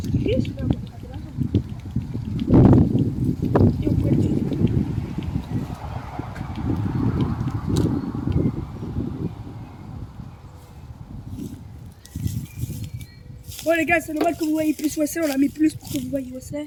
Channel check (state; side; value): identical; both; correlation 1.00